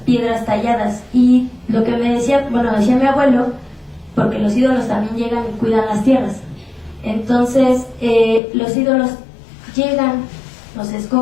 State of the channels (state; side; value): drops out; right; at 8.4 s